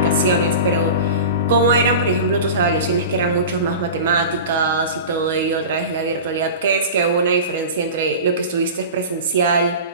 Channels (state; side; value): inverted; both; correlation -0.32